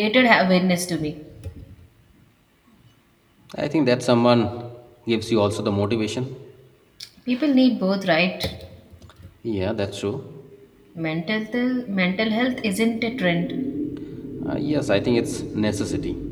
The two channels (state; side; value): identical; both; correlation 1.00